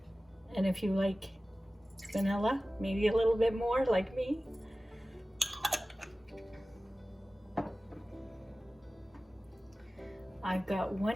And if you like vanilla, maybe a little bit more like me. I've got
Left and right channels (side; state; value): both; normal; correlation 0.96